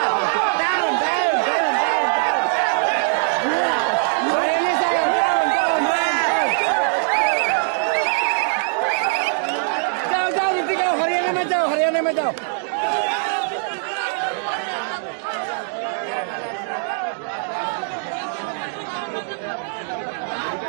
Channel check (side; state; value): left; silent; digital silence